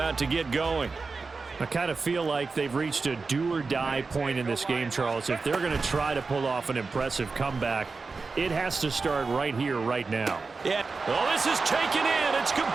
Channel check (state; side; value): quieter; left; 4.3 dB